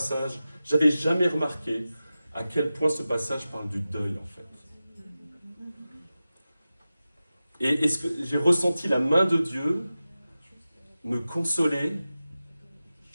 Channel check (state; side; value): inverted; both; correlation -0.94